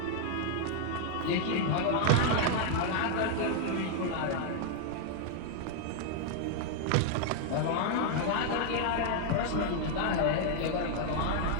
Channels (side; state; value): both; different; correlation 0.00